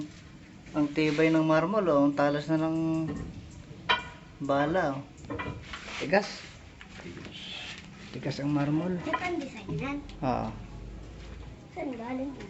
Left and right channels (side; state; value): both; identical; correlation 1.00